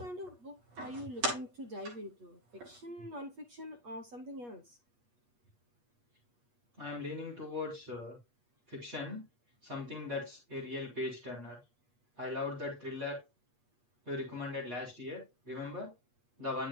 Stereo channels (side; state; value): left; late; 8.3 ms